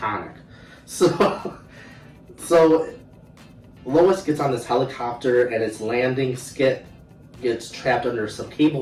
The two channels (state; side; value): identical; both; correlation 1.00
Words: So Lois gets on this helicopter and its landing skit gets trapped under some